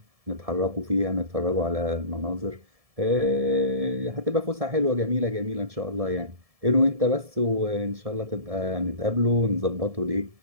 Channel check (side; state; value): left; late; 1.7 ms